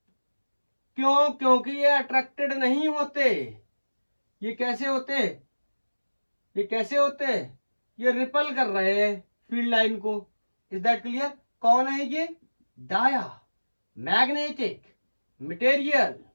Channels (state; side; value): inverted; both; correlation -1.00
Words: क्यों? क्योंकि ये अट्रैक्टेड नहीं होते। ये कैसे होते, ये कैसे होते, ये रिपल कर रहे हैं फील्ड लाइन को। Is that clear? कौन है ये, dia magnetic material.